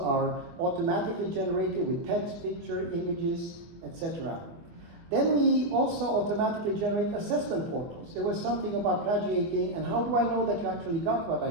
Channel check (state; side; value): late; left; 24 ms